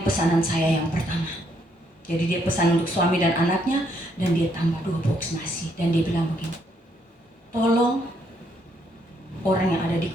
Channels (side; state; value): both; normal; correlation 0.72